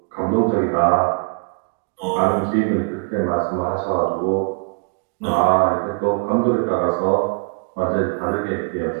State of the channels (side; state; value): left; quieter; 35.1 dB